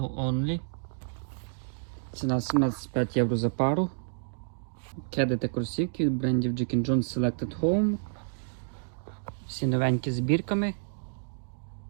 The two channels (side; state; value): left; silent; digital silence